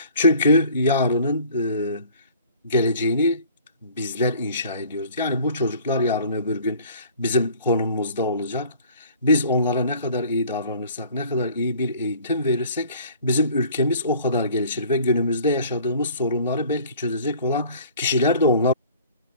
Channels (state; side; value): inverted; both; correlation -0.50